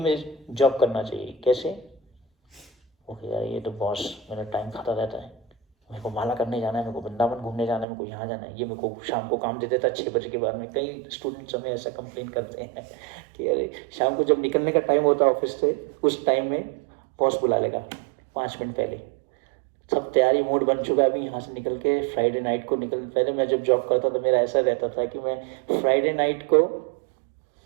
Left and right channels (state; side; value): drops out; left; at 7.9 s